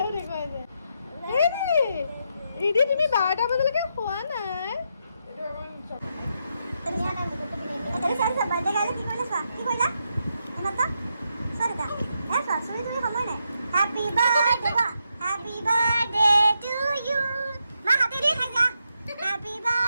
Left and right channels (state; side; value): inverted; both; correlation -0.81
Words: দেখুৱাইছে। ৰিধি তুমি 12টা বজালৈকে খোৱা নাই?